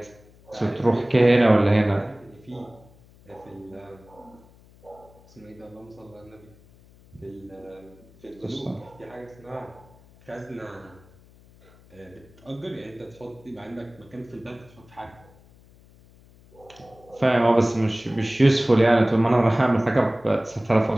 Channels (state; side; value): noise; left; hum, 26 dB below the sound